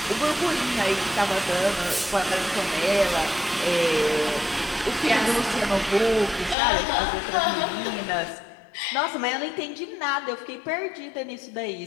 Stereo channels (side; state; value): right; drops out; at 6.6 s